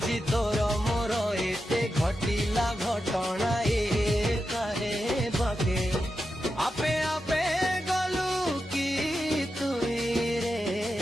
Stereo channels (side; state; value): both; normal; correlation 0.89